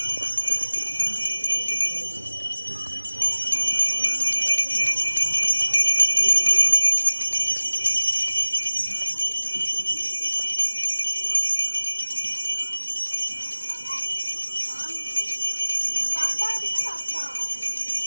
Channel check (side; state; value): both; inverted; correlation -1.00